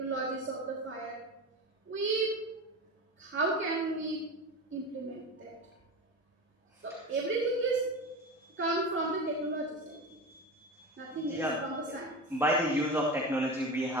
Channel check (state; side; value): normal; both; correlation 0.26